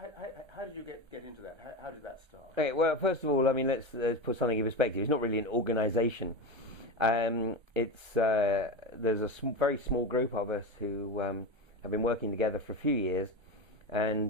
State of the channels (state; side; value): late; left; 1.2 ms